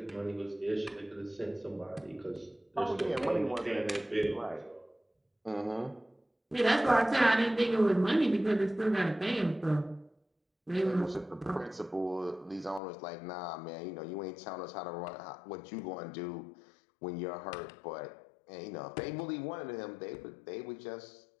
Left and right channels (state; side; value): drops out; right; at 12.8 s